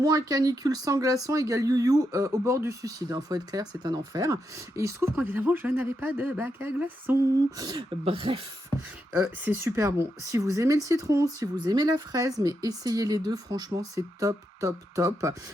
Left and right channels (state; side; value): normal; both; correlation 0.83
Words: sans glaçons égale you au bord du suicide. Faut être clair, c'est un enfer. Et il se trouve qu'évidemment, je n'avais pas de bac à glaçons. Bref, c'est super bon. Si vous aimez le citron, si vous aimez la fraise, mais essayez les deux, franchement, c'est top.